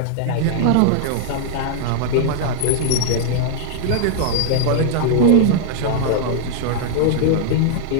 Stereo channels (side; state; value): both; different; correlation -0.01